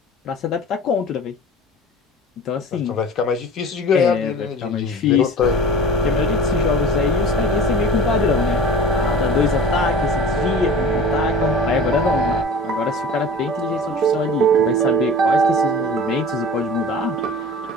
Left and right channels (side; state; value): both; normal; correlation 0.39